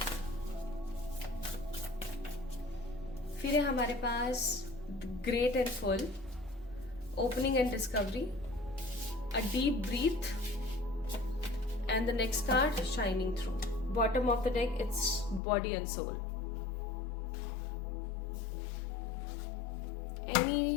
फिर है हमारे पास great and full, opening and discovery, a deep breath and the next card shining through. Bottom of the deck it's body and soul.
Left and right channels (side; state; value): right; drops out; at 15.4 s